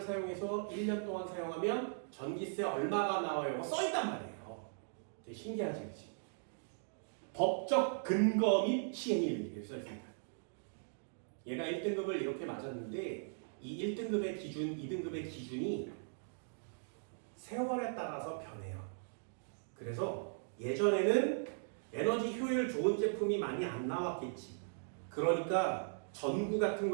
사용해서 1년 동안 사용하면 전기세 얼마가 나와요. 써있단 말이에요. 되게 신기하지, 그치? 법적 근거 및 시행일 이렇게 써있습니다. 얘가 1등급을 이렇게 맞았는데 이 1등급의 기준, 2등급의 기준이 세월에 따라서 변해요. 그래서 예전에는 에너지 효율 좋은 제품이 많이 안 나왔겠지. 그러니까 전구 같은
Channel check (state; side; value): silent; left; digital silence